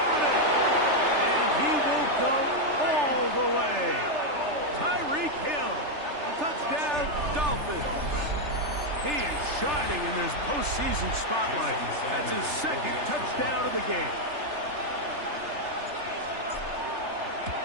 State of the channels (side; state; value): left; late; 3.3 ms